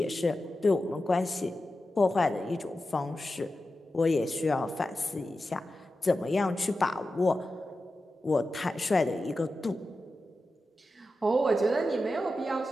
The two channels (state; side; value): normal; both; correlation 0.92